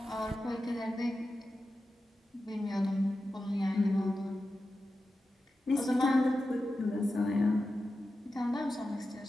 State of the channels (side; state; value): both; normal; correlation 0.92